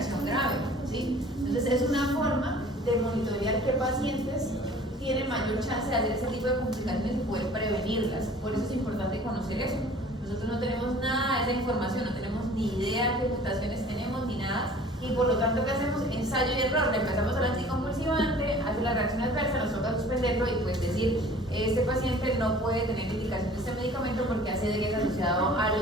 grave, ¿sí? Entonces es una forma de monitorear qué pacientes tienen mayor chance de hacer ese tipo de complicaciones y poder prevenirlas. Por eso es importante conocer eso. Nosotros no tenemos nada de esa información, no tenemos ni idea qué mutaciones tenemos ni nada, y por lo tanto, ¿qué hacemos? Ensayo y error. Le empezamos al anticonvulsivante, hace la reacción adversa, nos toca suspenderlo y pues decir, este paciente no puede tener indicación de este medicamento porque hace de que es asociado a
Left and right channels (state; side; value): normal; both; correlation 0.48